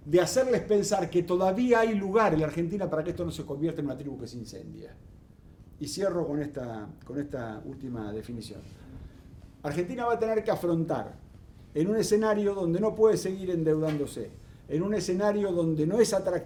de hacerles pensar que todavía hay lugar en la Argentina para que esto no se convierta en una tribu que se incendia. Y cierro con esta última definición. Argentina va a tener que afrontar, en un escenario donde no puede seguir endeudándose, en un escenario donde no es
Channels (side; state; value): both; identical; correlation 1.00